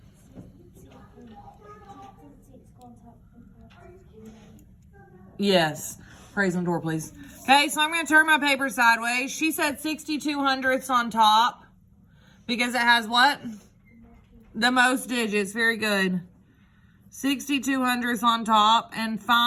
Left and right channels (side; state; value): both; identical; correlation 1.00